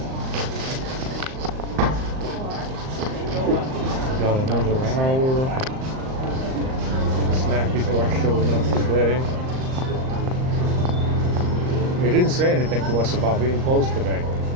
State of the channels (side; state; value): left; late; 38 ms